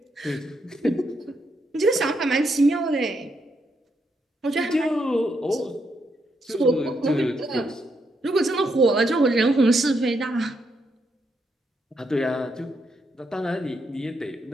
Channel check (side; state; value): both; normal; correlation 0.79